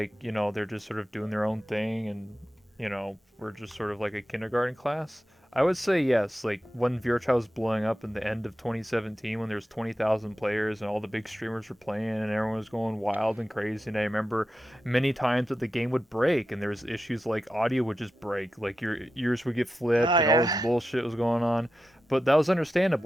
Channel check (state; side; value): normal; both; correlation 0.91